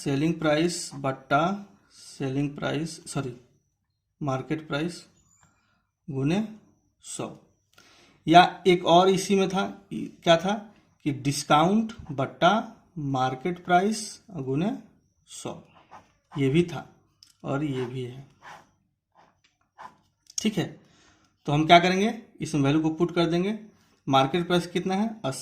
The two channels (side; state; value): both; identical; correlation 1.00